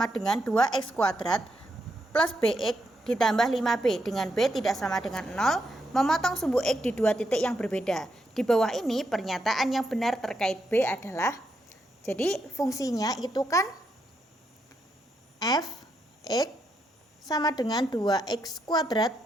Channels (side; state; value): both; normal; correlation 0.81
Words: dengan 2x kuadrat plus bx ditambah 5b dengan b tidak sama dengan 0, memotong sumbu x di dua titik yang berbeda. Di bawah ini pernyataan yang benar terkait b adalah, jadi fungsinya itu kan fx sama dengan 2x kuadrat